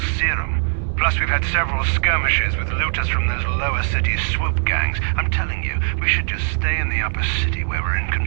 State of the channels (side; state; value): left; silent; digital silence